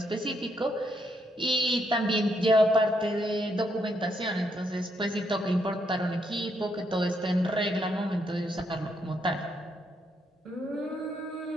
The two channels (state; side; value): normal; both; correlation 0.76